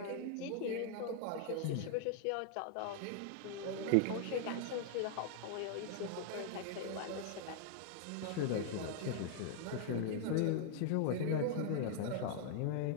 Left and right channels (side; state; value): both; different; correlation 0.00